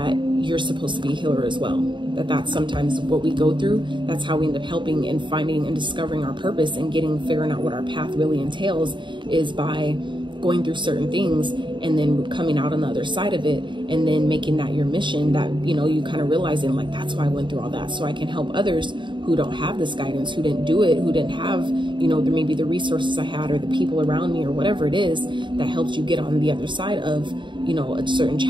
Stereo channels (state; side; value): late; left; 0.23 ms